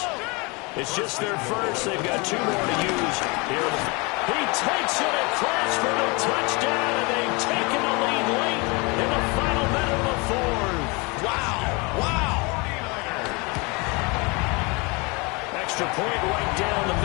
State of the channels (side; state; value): right; quieter; 28.2 dB